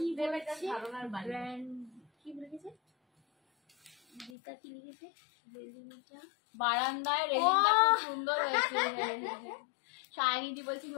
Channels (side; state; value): right; drops out; at 4.3 s